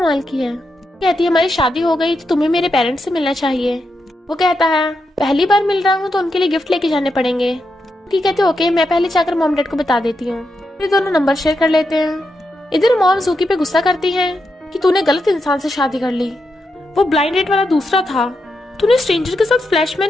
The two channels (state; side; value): normal; both; correlation 0.85